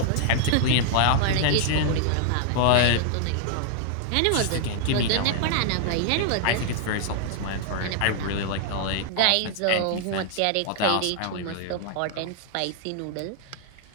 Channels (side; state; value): both; different; correlation 0.00